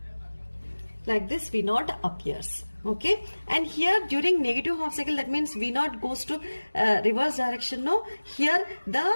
Like this V naught appears. Okay, and here during negative half cycle, that means V naught goes to reverse direction. No, here the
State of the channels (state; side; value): inverted; both; correlation -1.00